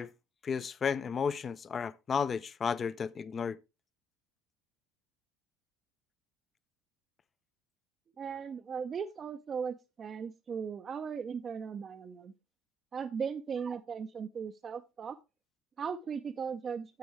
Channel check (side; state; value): both; normal; correlation 0.77